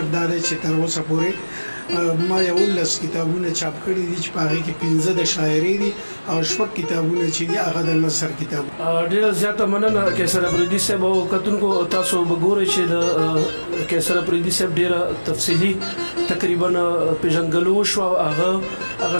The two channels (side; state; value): both; inverted; correlation -1.00